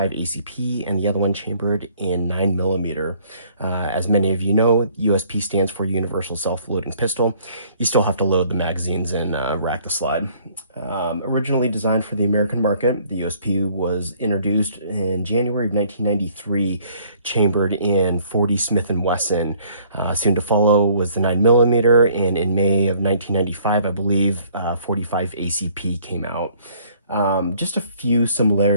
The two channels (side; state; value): both; inverted; correlation -0.60